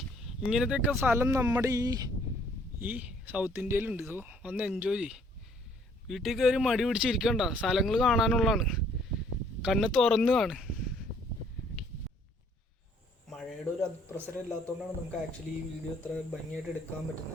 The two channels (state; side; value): normal; both; correlation 0.62